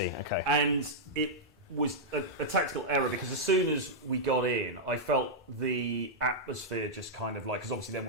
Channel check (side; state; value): both; normal; correlation -0.07